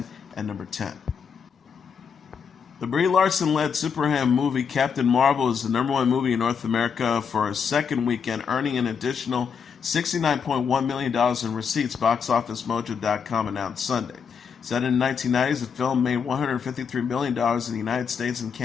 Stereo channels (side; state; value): right; quieter; 6.5 dB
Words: at #10. The Brie Larson-led superhero movie Captain Marvel is the #1 movie in North America for a second weekend, earning an additional $69.1 million in receipts, BoxOfficeMojo.com announced Sunday. Set in the 1990s, the film made $153 million in the United States and